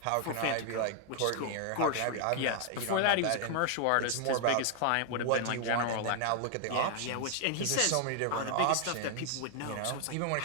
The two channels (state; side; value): different; both; correlation 0.00